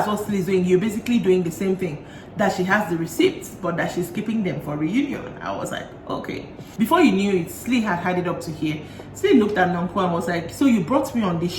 what Slee is doing, you're basically doing the same thing, that she has the receipts, but that she's keeping them for reunion. I was like, okay. Before you knew it, Slee had had it up to here. Slee looked at Nonku and was like, so you brought me on this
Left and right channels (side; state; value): both; identical; correlation 1.00